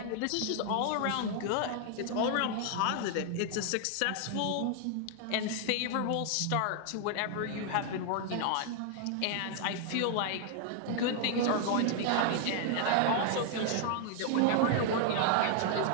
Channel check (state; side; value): different; both; correlation 0.00